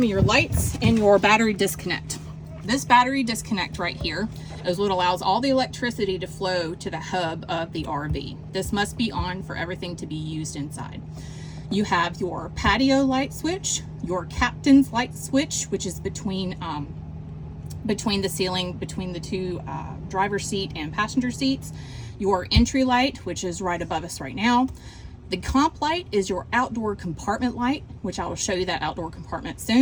of your lights and your battery disconnect. This battery disconnect right here is what allows all the electricity to flow to the hub of the RV. This must be on for everything to be used inside. You have your patio light switch, your captain's light switch, which is between the ceiling, between the two driver's seat and passenger seats, your entry light, which is right above us right now. The comp light is your outdoor compartment light, which I will show you that outdoor compartment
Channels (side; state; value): both; identical; correlation 1.00